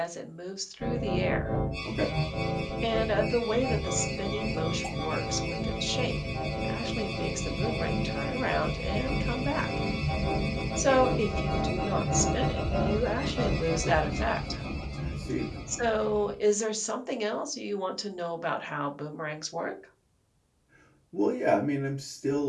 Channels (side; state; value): both; identical; correlation 1.00